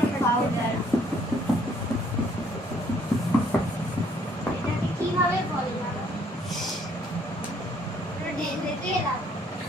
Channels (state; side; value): normal; both; correlation 0.64